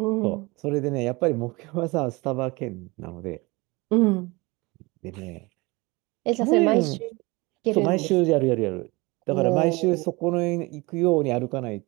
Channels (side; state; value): left; quieter; 24.3 dB